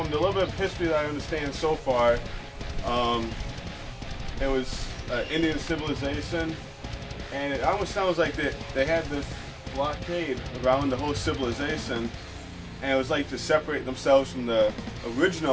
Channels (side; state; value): both; identical; correlation 1.00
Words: the little bit of history that I understand so far, it was Indian civilization. And it almost sounds like they had this blockade around the whole civilization, and it was like to separate themselves from the